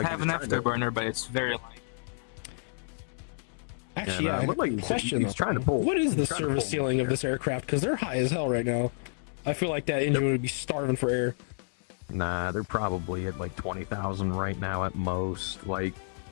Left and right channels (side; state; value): right; silent; digital silence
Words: he have was an trying to- afterburner, but it's very light. Actually, Yeah, yeah. looked like Question he's though. trying to pull. What is the he's trying to service pull- ceiling of this aircraft? Because they're high as hell right now. I feel like that engine would be starving for air. Nah, they're probably at like 20,000 right now at most. Like,